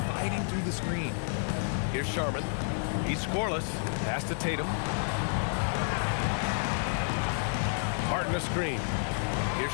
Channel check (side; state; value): right; silent; 58 dB below the other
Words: fighting through the screen. Here's Sharman. He's scoreless. Pass to Tatum. Martin a screen. Here's